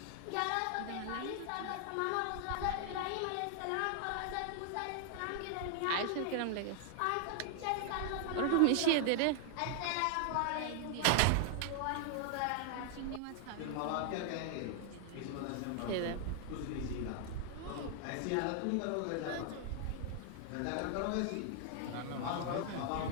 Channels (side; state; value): both; different; correlation 0.00